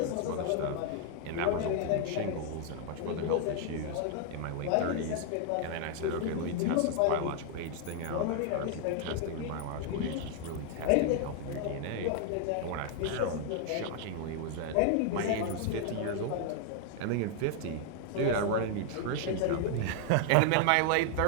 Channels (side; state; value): both; different; correlation 0.00